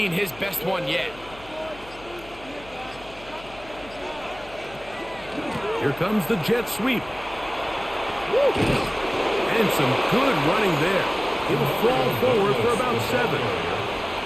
his best one yet. Here comes the jet sweep. And some good running there. He'll fall forward for about 7.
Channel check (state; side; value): noise; left; hum, 20 dB below the sound